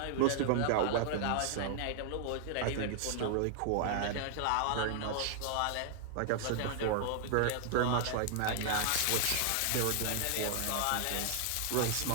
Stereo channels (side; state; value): both; different; correlation -0.01